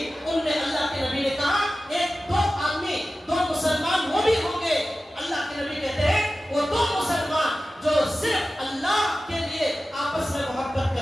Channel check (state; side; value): normal; both; correlation 0.95